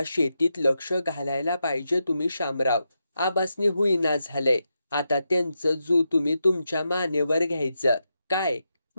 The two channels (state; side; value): inverted; both; correlation -0.86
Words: शेतीत लक्ष घालायला पाहिजे तुम्ही शामराव. आबासनी होईना झालंय. आता त्यांचं जू तुम्ही तुमच्या मानेवर घ्यायचं. काय?